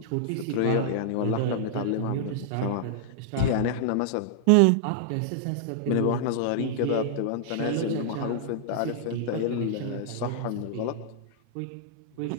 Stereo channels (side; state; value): both; different; correlation -0.01